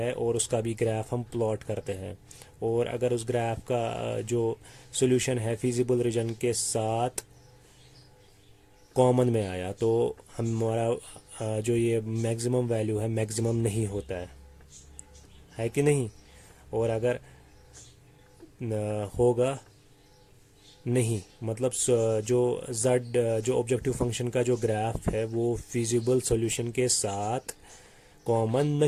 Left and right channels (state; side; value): identical; both; correlation 1.00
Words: और उसका भी ग्राफ हम प्लॉट करते हैं। और अगर उस ग्राफ का जो सॉल्यूशन है फिजिबल रीजन के साथ कॉमन में आया, तो हमारा जो ये मैक्सिमम वैल्यू है मैक्सिमम नहीं होता है कि नहीं। और अगर होगा नहीं, मतलब जो जो ऑब्जेक्टिव फंक्शन का जो ग्राफ है वो फिजिबल सॉल्यूशन के साथ कॉमन